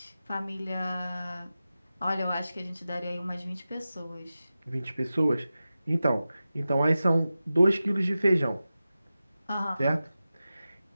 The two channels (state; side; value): inverted; both; correlation -0.94